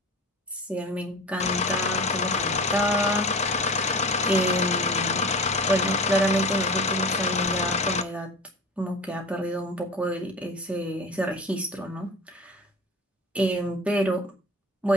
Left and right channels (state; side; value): normal; both; correlation 0.34